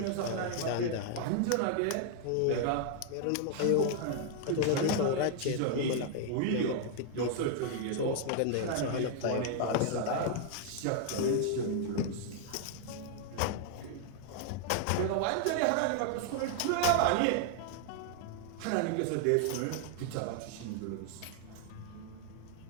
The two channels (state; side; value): different; both; correlation 0.00